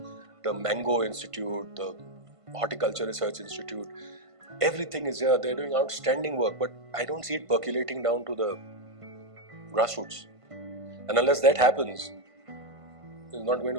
the Mango Institute, the Horticulture Research Institute. Everything is here. They're doing outstanding work, but I don't see it percolating down to the grassroots. And unless that happens, it's not going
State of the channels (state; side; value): late; left; 1.5 ms